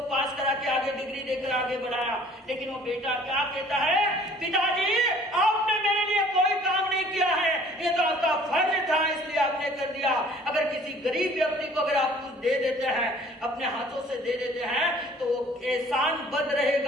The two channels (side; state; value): both; normal; correlation 0.53